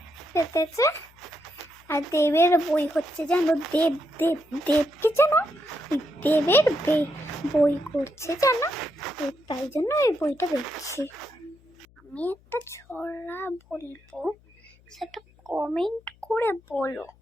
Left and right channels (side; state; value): left; noise; hum, 29 dB below the sound